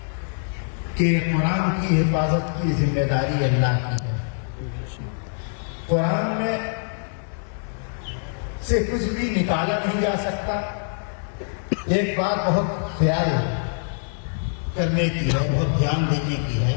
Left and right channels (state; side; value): silent; right; 59 dB below the other